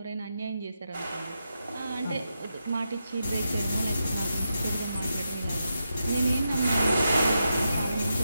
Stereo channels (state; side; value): inverted; both; correlation -0.86